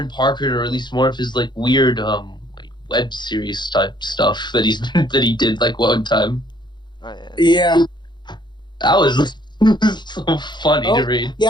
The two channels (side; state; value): right; late; 0.21 ms